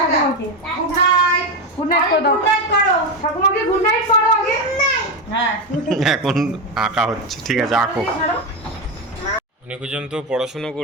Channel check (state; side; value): normal; both; correlation 0.13